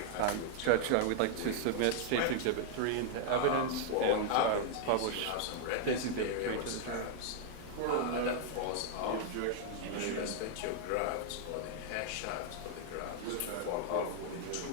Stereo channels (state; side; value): different; both; correlation 0.00